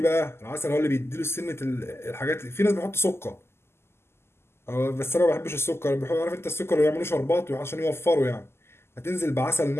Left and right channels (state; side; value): late; right; 0.12 ms